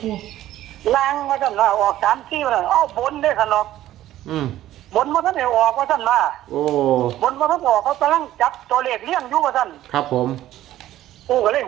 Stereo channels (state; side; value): quieter; left; 13.7 dB